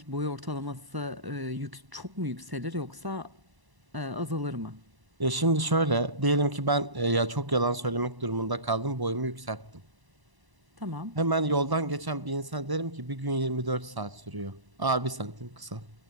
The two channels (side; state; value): left; late; 1.0 ms